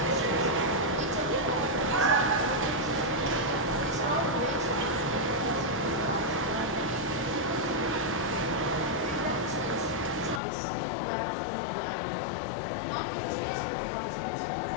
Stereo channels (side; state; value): right; drops out; at 10.4 s